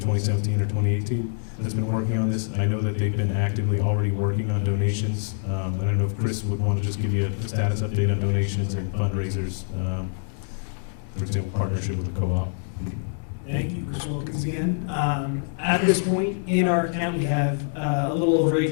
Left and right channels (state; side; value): silent; right; 62 dB below the other